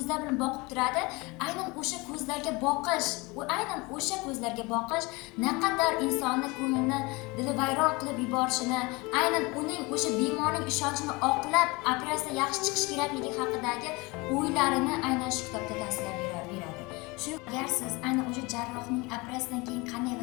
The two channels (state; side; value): quieter; right; 25.1 dB